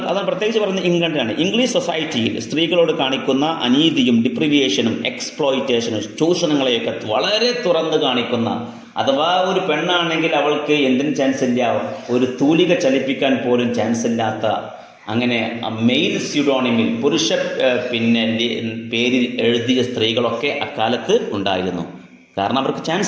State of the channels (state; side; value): identical; both; correlation 1.00